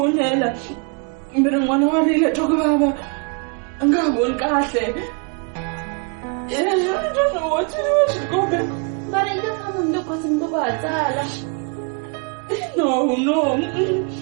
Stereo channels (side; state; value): left; quieter; 36.1 dB